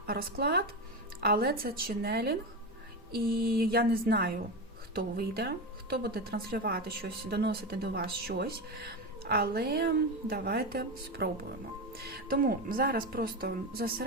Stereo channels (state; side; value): normal; both; correlation 0.18